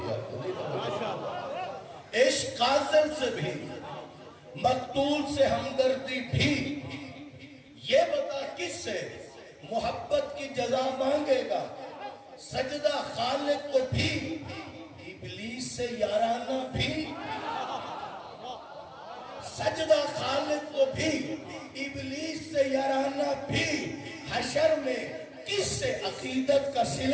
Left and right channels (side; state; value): both; identical; correlation 1.00